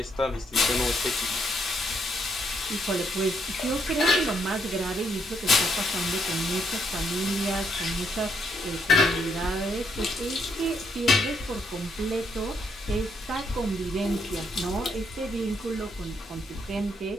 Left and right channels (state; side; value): normal; both; correlation 0.74